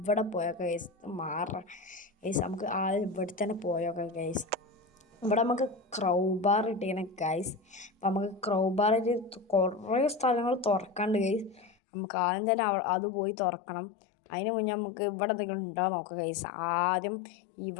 പോയൊക്കെ ഗൈസ് ഗൈസ്. നമുക്ക് ആദ്യം ഇവിടെ തന്നെ പോയൊക്കെ ഗൈസ്. ഇവിടെ നമുക്ക് ക്രൗബാർ ഇട്ടിങ്ങനെ ഗൈസ്. അപ്പം നമുക്ക് ക്രൗബാറിൽ കുറേ സ്ഥലങ്ങൾ തുറക്കാണ്ട് ഗൈസ്. നമുക്ക് ആദ്യം തന്നെ അത് പോയി തുറക്കണം. അതിന് മുന്നേ നമുക്ക് ഇവിടെ എന്തെങ്കിലും ഉണ്ടാകാൻ നോക്കാം ഗൈസ്. ആദ്യം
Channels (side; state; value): right; drops out; at 11.7 s